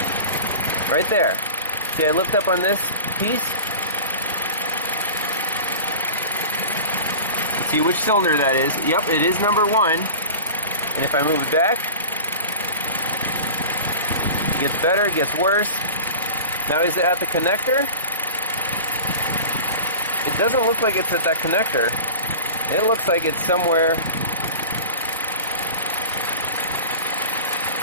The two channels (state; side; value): inverted; both; correlation -0.37